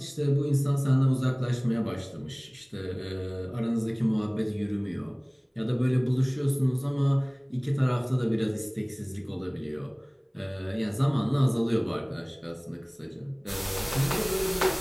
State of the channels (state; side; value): identical; both; correlation 1.00